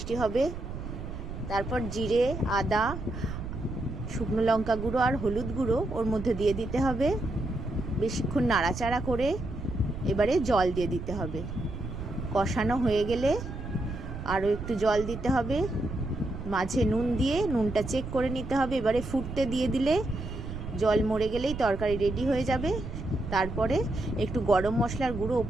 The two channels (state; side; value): noise; right; rumble, 8 dB below the sound